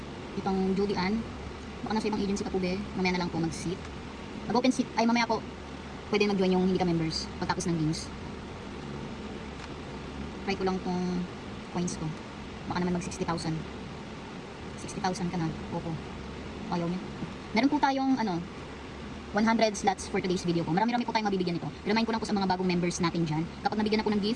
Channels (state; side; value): identical; both; correlation 1.00